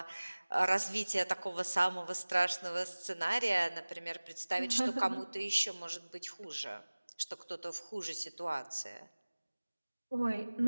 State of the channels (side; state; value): both; inverted; correlation -1.00